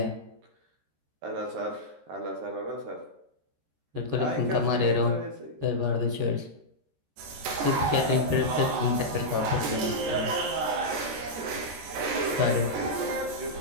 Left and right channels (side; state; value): left; late; 13 ms